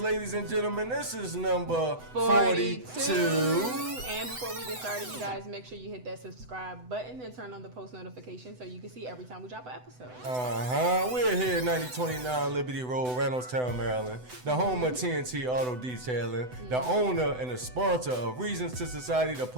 ladies and gentlemen. This is number 42. And before we get started, you guys make sure you hit that subscribe button and turn on the post notification so you can see every time we drop an episode. We're here at 9029 Liberty Road, Reynoldstown, Maryland, the home of TNT Auto Detailing, the owner and the sponsor of Reasons to Society, the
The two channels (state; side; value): late; left; 8.0 ms